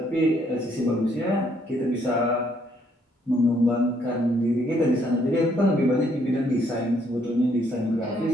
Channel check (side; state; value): both; normal; correlation 0.69